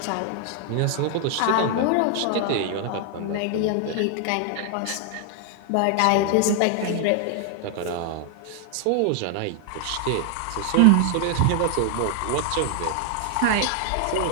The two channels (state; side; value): different; both; correlation 0.00